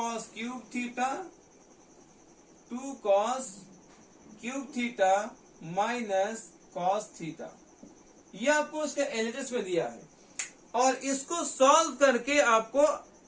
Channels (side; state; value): both; identical; correlation 1.00